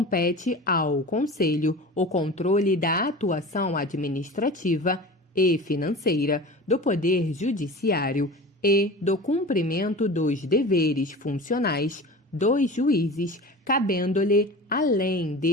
ao Conselho o controle da atuação administrativa e financeira do Poder Judiciário e do cumprimento dos deveres funcionais dos juízes, cabendo-lhe, além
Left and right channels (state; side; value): normal; both; correlation 0.35